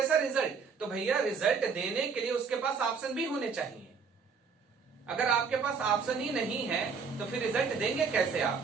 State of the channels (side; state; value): left; quieter; 5.5 dB